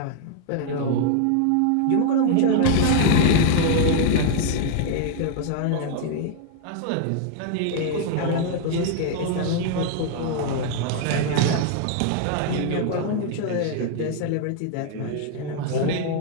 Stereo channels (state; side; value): different; both; correlation 0.00